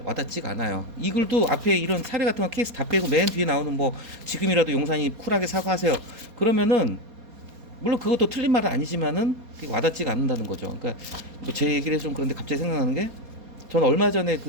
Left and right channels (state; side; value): late; left; 4.2 ms